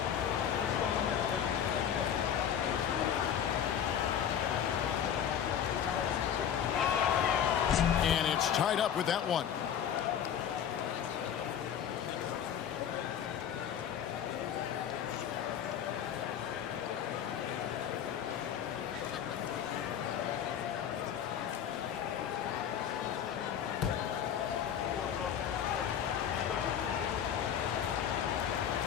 And it's tied up with that one.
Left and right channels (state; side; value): quieter; right; 9.0 dB